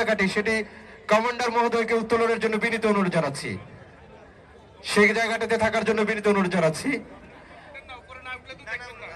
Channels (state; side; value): identical; both; correlation 1.00